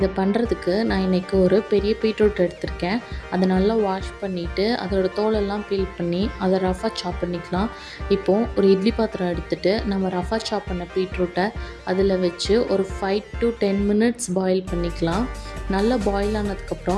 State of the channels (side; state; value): both; identical; correlation 1.00